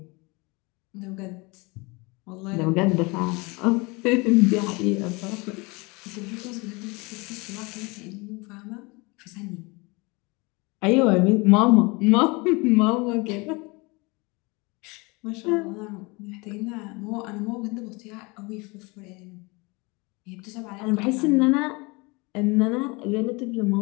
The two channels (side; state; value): right; quieter; 26.6 dB